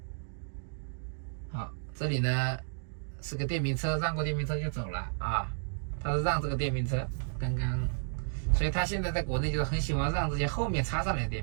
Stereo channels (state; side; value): silent; left; digital silence